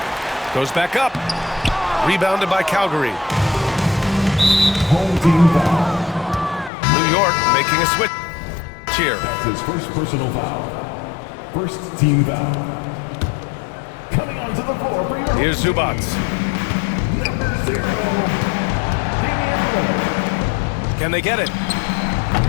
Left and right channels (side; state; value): right; drops out; at 6.7 s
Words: Goes back up. Rebounded by Calgary. Home team foul. New York making a switch here. That's his first personal foul. First team foul. Coming onto the floor for your Here's Zubats. number 0, Damian Lillard. Can they get it?